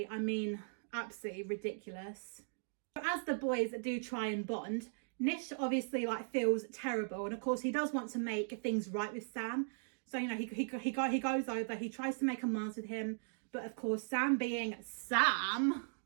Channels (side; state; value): left; silent; digital silence